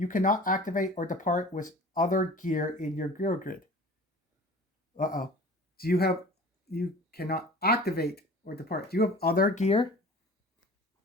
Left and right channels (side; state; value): both; normal; correlation 0.42